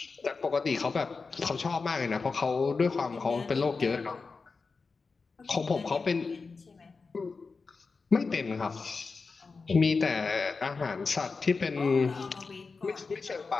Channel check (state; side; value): quieter; right; 4.5 dB